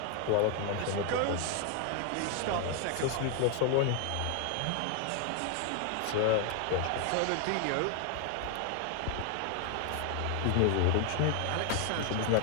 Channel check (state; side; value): different; both; correlation 0.01